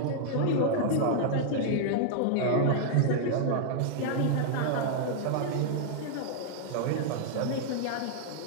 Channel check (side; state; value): both; different; correlation -0.01